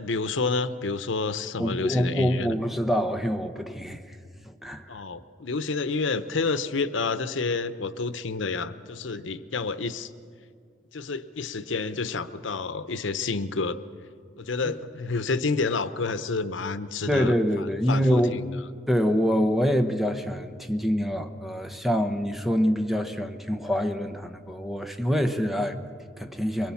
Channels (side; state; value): both; normal; correlation 0.63